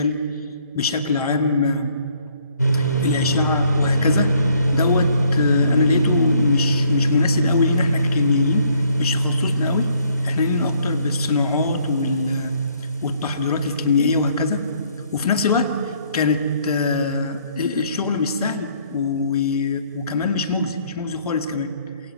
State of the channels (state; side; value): inverted; both; correlation -0.65